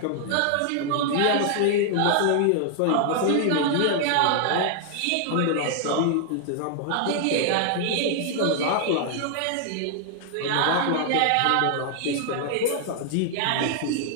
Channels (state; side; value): different; both; correlation 0.00